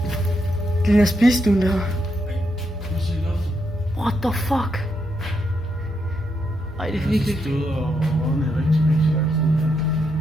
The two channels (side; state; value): both; normal; correlation 0.81